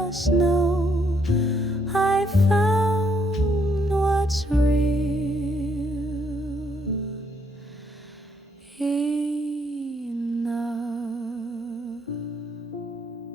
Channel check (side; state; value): both; normal; correlation 0.71